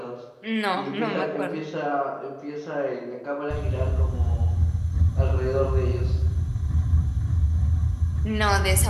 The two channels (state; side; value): identical; both; correlation 1.00